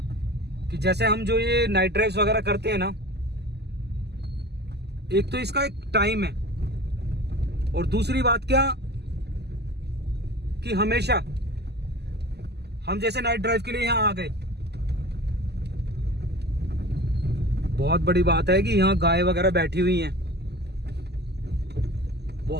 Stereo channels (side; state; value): left; late; 0.49 ms